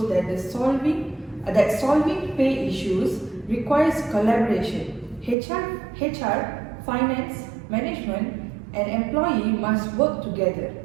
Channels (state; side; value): drops out; left; at 5.4 s